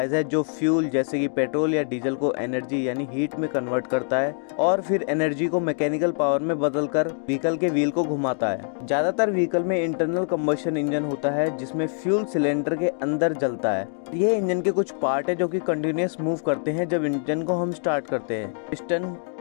है जो फ्यूल जैसे कि पेट्रोल या डीजल को एनर्जी यानी हीट में कन्वर्ट करता है और फिर एनर्जी को मैकेनिकल पावर में बदलकर व्हीकल के व्हील को घुमाता है। ज्यादातर व्हीकल में इंटरनल कंबशन इंजन होता है जिसमें फ्यूल सिलेंडर के अंदर जलता है। ये इंजन के कुछ पार्ट है जो कि कंटिन्यूअस मूव करते हैं जब इंजन को हम स्टार्ट करते हैं। Piston,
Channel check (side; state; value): right; silent; 62 dB below the other